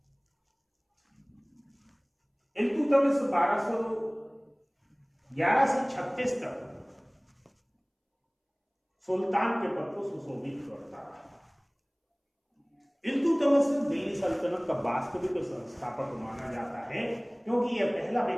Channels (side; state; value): both; identical; correlation 1.00